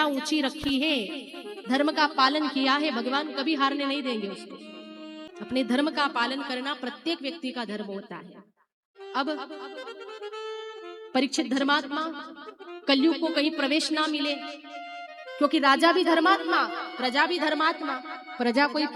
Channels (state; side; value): identical; both; correlation 1.00